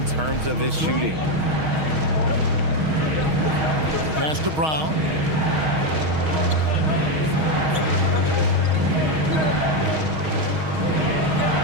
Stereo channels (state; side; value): late; left; 6.4 ms